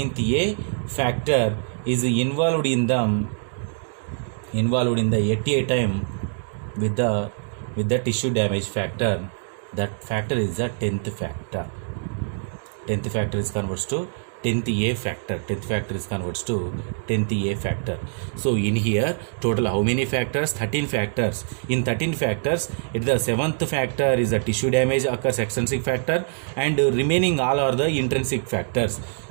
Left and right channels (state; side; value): silent; left; digital silence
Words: A factor is involved in the at a time with the tissue damage factor. That factor is the 10th factor. 10th factor is converts to 10th A factor. 10th factor is converts to 10th A factor. So in here, total how many factors? 13 factors. In 13 factors, the 7th factor is the tissue damage occurs, extrinsic factor, and remaining all are the intrinsic factors.